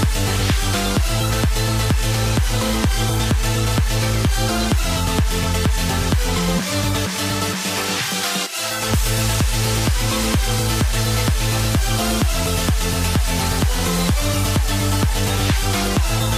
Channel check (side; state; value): both; identical; correlation 1.00